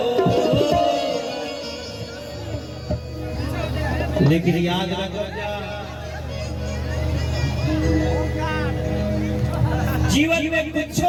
लेकिन याद रखो जीवन में कुछ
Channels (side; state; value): both; identical; correlation 1.00